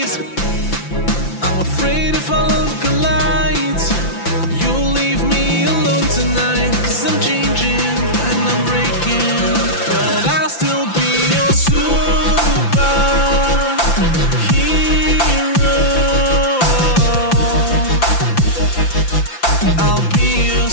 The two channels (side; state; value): right; late; 5.9 ms